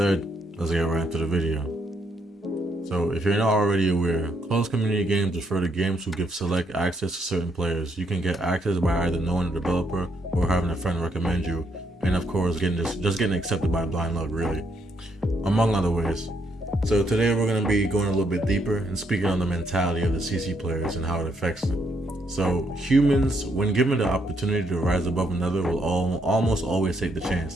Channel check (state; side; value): normal; both; correlation 0.75